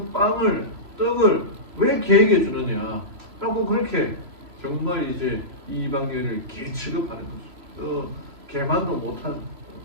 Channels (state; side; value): late; left; 3.0 ms